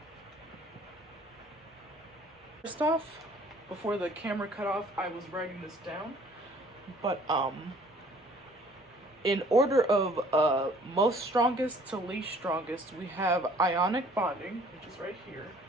first off, before the camera cut off, I was writing this down, but in order of most strongest to least strongest, we have ionic bonding, which is right here,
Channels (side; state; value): both; normal; correlation 0.56